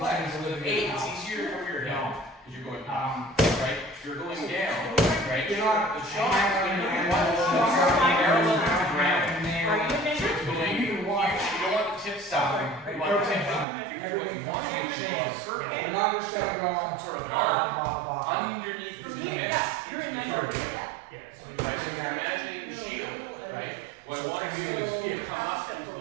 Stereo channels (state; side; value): drops out; left; at 13.7 s